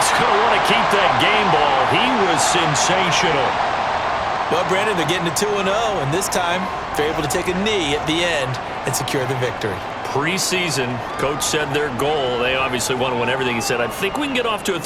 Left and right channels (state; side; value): identical; both; correlation 1.00